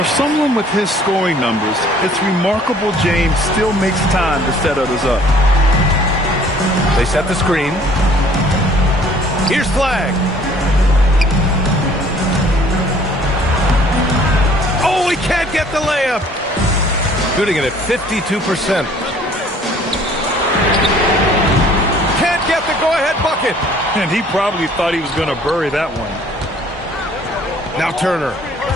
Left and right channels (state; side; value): normal; both; correlation 0.56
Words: Someone with his scoring numbers, it's remarkable James still makes time to set others up. They set the screen. Here's Flag. Oh, he can't get the layup. Shooting it at 52%. Can't get the go-ahead bucket. And he probably thought he was going to bury that one. Now Turner.